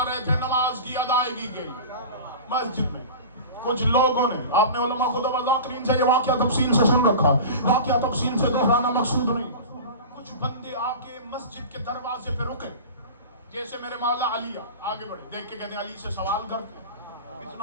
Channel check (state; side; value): inverted; both; correlation -0.33